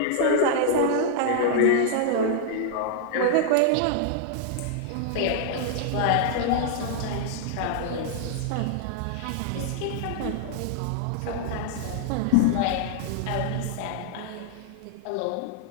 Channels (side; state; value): both; different; correlation -0.01